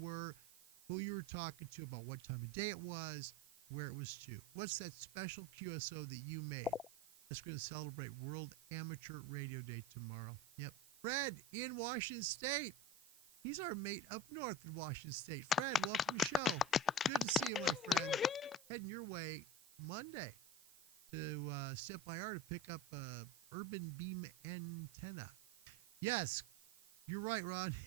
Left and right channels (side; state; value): right; noise; hiss, 22 dB below the sound